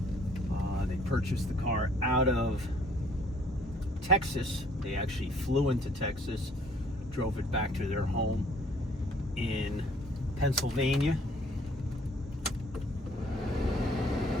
They purchased the car out of Texas. They actually flew into Texas, drove it back to their home in Pennsylvania.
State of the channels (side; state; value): both; normal; correlation 0.60